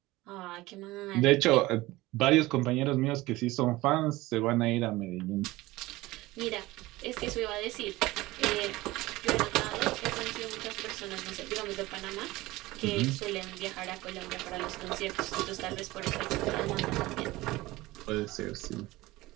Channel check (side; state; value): left; quieter; 19.2 dB